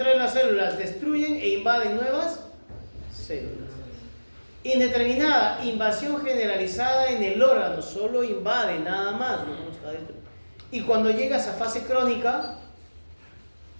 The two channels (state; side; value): inverted; both; correlation -1.00